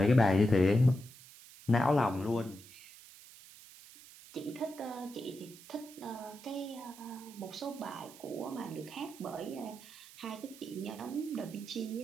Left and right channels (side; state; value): right; noise; hiss, 19 dB below the sound